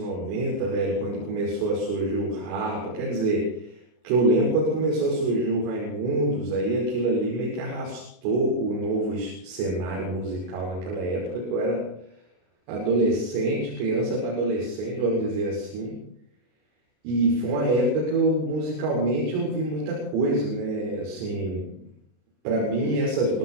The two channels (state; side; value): late; left; 33 ms